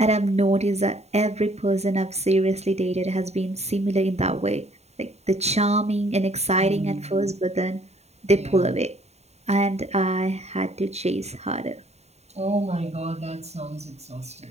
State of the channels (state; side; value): late; left; 0.31 ms